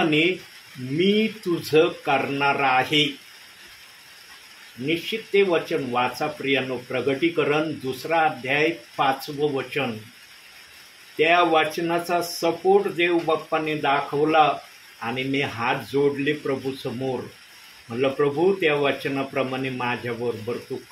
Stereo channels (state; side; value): identical; both; correlation 1.00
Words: मी तुझं करणार आहे. निश्चित ते वचन वाचा प्रियांनो. प्रगटीकरण 2 अध्याय 5वं वचन. त्या वचनाचा सपोर्ट देव बाप्पाने दाखवला आणि मी हात जोडले प्रभू समोर. म्हणलं प्रभू, त्या वचनाप्रमाणे माझ्याबरोबर तू